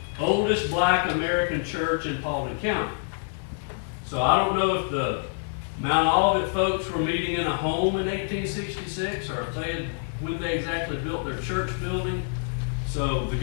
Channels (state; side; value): silent; right; digital silence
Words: oldest black American church in Paulding County. So I don't know if the Mount Olivet folks were meeting in a home in 1866 or if when they exactly built their church building. So the